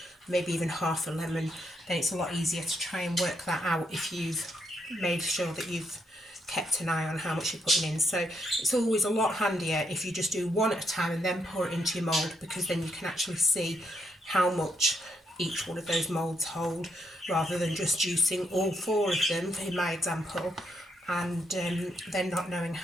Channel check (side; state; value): both; normal; correlation 0.78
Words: maybe even half a lemon, then it's a lot easier to try and work that out if you've made sure that you've kept an eye on how much you're putting in. So it's always a lot handier if you just do one at a time and then pour it into your mould, because then you can actually see how much each one of those moulds hold, rather than just juicing all 4 of them in my example and then not knowing